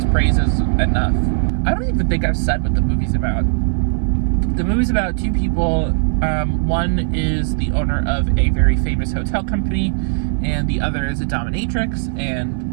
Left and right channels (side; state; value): left; silent; 66 dB below the other